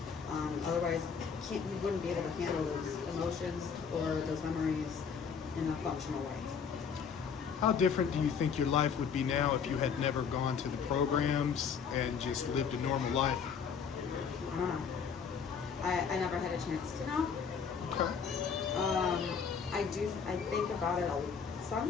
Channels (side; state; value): right; quieter; 6.4 dB